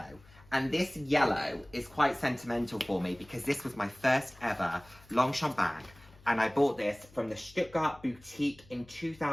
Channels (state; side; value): noise; left; hum, 25 dB below the sound